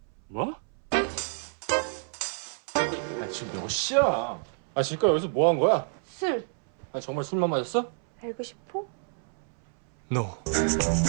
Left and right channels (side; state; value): left; silent; 59 dB below the other